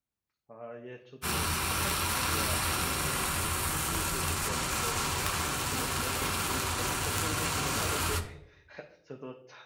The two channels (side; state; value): both; identical; correlation 1.00